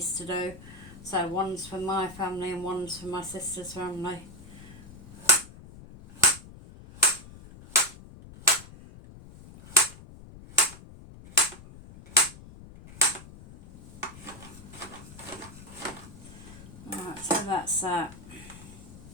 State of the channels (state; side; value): noise; left; rumble, 17 dB below the sound